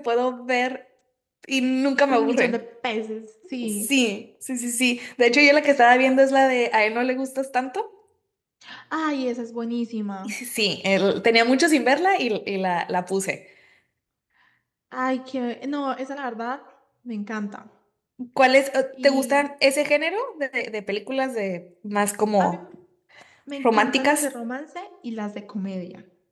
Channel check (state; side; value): identical; both; correlation 1.00